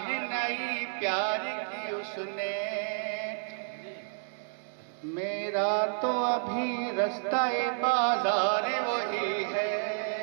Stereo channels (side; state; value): left; silent; digital silence